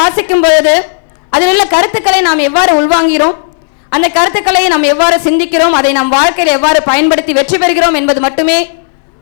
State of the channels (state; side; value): silent; right; digital silence